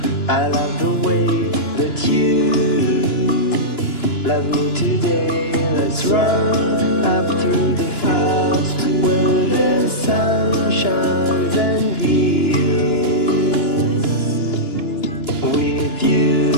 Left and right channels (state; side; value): late; right; 2.9 ms